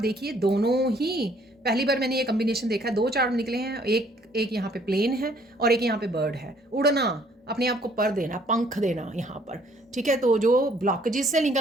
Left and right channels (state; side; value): normal; both; correlation 0.62